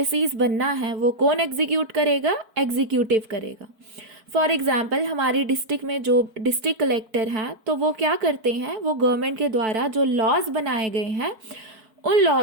बनना है वो कौन एग्जीक्यूट करेगा? एग्जीक्यूटिव करेगा. फॉर एग्जाम्पल हमारी डिस्ट्रिक्ट में जो डिस्ट्रिक्ट कलेक्टर हैं तो वो क्या करते हैं, वो गवर्नमेंट के द्वारा जो लॉज बनाए गए हैं उन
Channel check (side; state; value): left; late; 4.5 ms